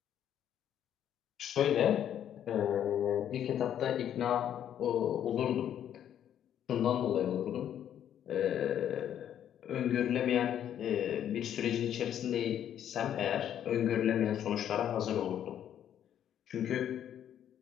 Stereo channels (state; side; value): quieter; right; 10.1 dB